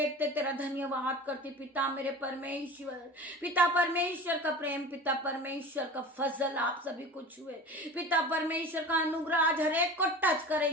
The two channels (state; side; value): normal; both; correlation 0.35